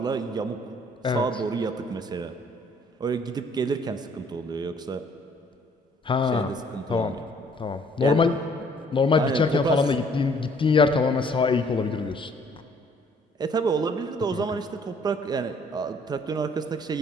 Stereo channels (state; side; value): normal; both; correlation 0.61